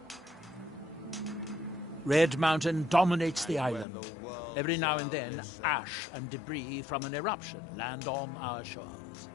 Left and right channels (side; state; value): right; drops out; at 3.9 s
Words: Red Mountain dominates the island. Every now and then, ash and debris from an eruption land on our shores.